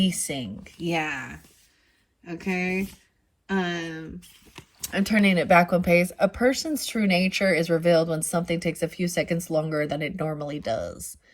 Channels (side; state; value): both; identical; correlation 1.00